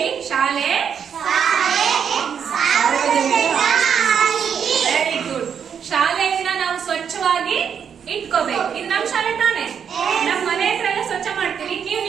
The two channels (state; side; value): quieter; left; 7.5 dB